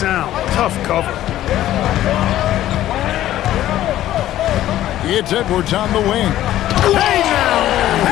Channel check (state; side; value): quieter; right; 13.4 dB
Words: Tough cover. It's Edwards on the wing. Hey now!